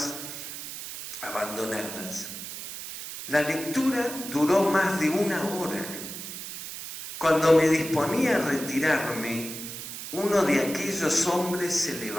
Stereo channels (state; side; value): noise; right; hiss, 9 dB below the sound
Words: abandonadas. La lectura duró más de 1 hora. Cuando me disponía a retirarme, uno de aquellos hombres se